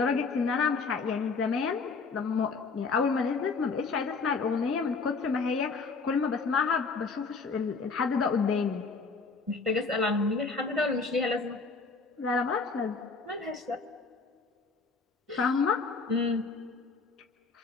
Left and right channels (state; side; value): quieter; right; 4.5 dB